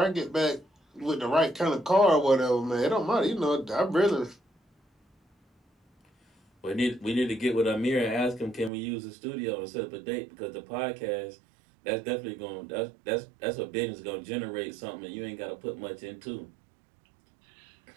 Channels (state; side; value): drops out; left; at 8.7 s